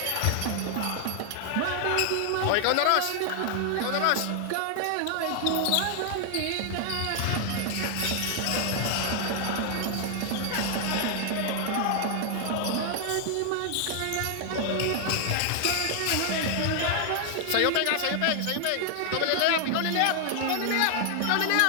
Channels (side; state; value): both; different; correlation 0.00